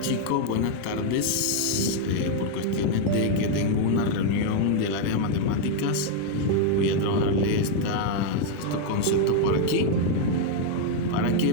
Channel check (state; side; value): different; both; correlation 0.00